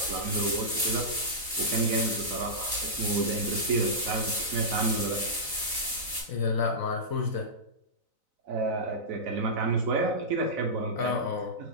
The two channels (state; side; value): late; left; 4.0 ms